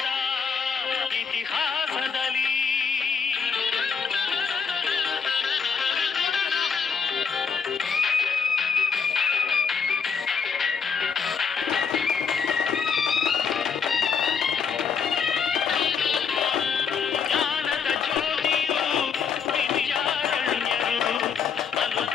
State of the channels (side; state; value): right; quieter; 6.2 dB